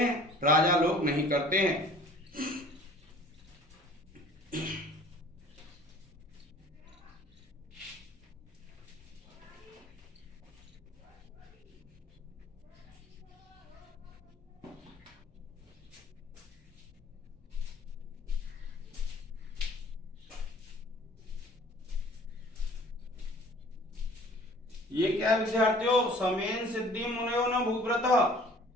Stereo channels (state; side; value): normal; both; correlation 0.50